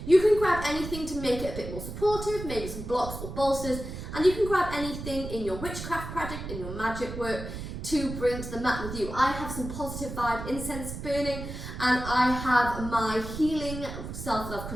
you can grab anything to make it a bit more supportive, maybe some blocks or bolsters, and you can grab anything in your witchcraft project, in your magic work, to bring to the mat with you. I have some positive vibe incense burning, and I have my healing self-love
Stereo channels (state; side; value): noise; right; rumble, 8 dB below the sound